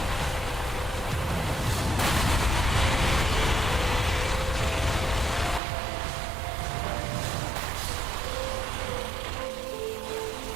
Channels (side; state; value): left; drops out; at 5.6 s